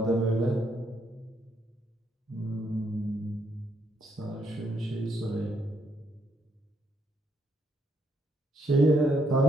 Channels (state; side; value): normal; both; correlation 0.73